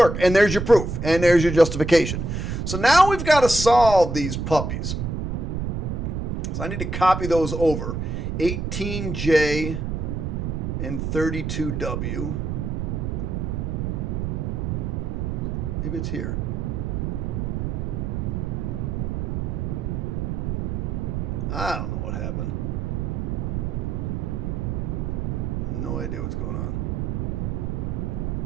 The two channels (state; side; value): noise; right; rumble, 2 dB below the sound